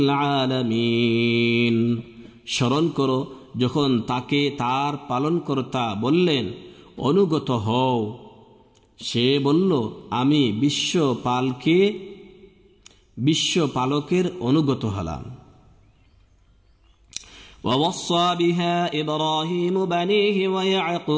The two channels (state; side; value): identical; both; correlation 1.00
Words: العالمين। স্মরণ করো যখন তাকে তার পালনকর্তা বললেন, অনুগত হও, সে বলল, আমি বিশ্বপালকের অনুগত হলাম। ووصى بها إبراهيم بنيه